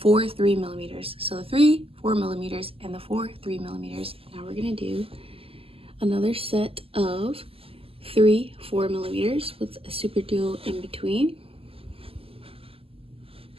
3 millimeters. So the 3 4 millimeters and the 4 3 millimeters. Now we're gonna do another set of 3 4 millimeters with a SuperDuo in between.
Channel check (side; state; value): left; late; 0.27 ms